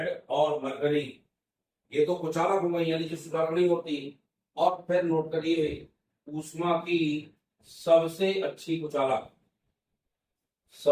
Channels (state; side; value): identical; both; correlation 1.00